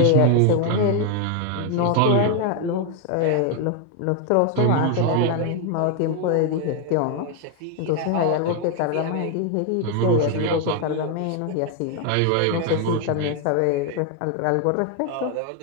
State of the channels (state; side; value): different; both; correlation 0.01